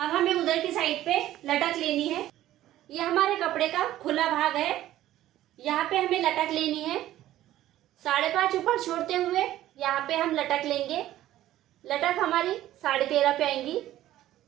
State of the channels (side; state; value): left; quieter; 13.9 dB